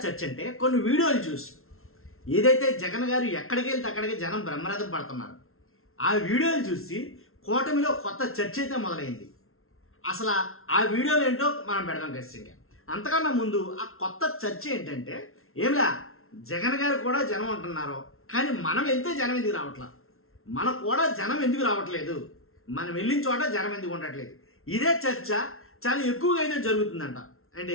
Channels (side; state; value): right; late; 0.62 ms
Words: చర్చ అంటే కొన్ని వీడియోలు చూసి ఏదైతే జగన్ గారు ఎక్కడికి వెళ్తే అక్కడికి జనం బ్రహ్మరథం పడుతున్నారు. ఆ వీడియోలు చూసి కూటమిలో కొత్త చర్చ అయితే మొదలైంది. అసలు ఆ వీడియోలు ఏంటో మనం పెడదాం ఖచ్చితంగా. అంతకన్నా ముందు ఆ కొత్త చర్చ ఏంటంటే ఏమిలా జగన్ గారు కూడా జనం అంటున్నారు, కానీ మనం వెళ్తే జనం ఎందుకు రావట్లా, మనకు కూడా జనం ఎందుకు రావట్లేదు, మనం వెళ్ళిన చోట జనం ఎందుకు ఉండట్లేదు. ఇదే చర్చ చాలా ఎక్కువగా అయితే జరుగుతుందంట. అంటే